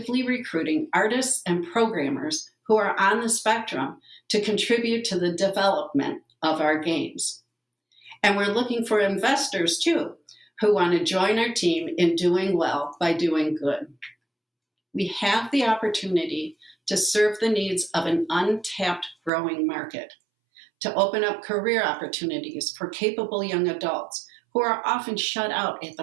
recruiting artists and programmers who are on the spectrum to contribute to the development of our games. And we're looking for investors too, who want to join our team in doing well by doing good. We have the opportunity to serve the needs of an untapped growing market, to open up career opportunities for capable young adults who are often shut out at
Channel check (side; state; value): left; drops out; at 19.3 s